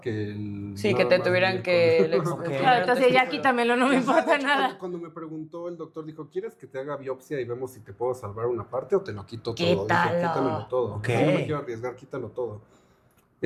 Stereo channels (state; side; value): identical; both; correlation 1.00